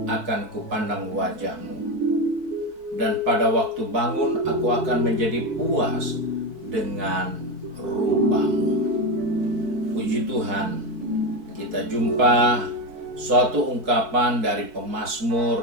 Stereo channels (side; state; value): left; late; 4.7 ms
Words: akan kupandang wajah-Mu, dan pada waktu bangun aku akan menjadi puas dengan rupa-Mu. Puji Tuhan, kita jumpa suatu ungkapan dari